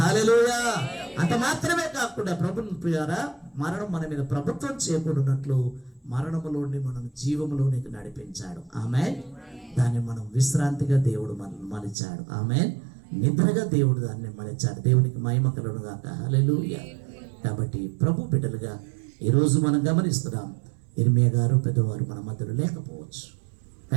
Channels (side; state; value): left; drops out; at 12.0 s